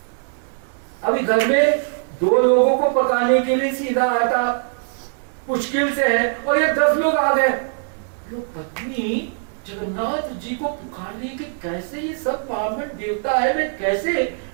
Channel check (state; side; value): silent; left; 61 dB below the other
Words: अभी घर में 2 लोगों को पकाने के लिए सीधा आटा मुश्किल से है, और ये 10 लोग आ गए। लोग पत्नी जगन्नाथ जी को पुकारने के कैसे, ये सब ब्राह्मण देवता है, मैं कैसे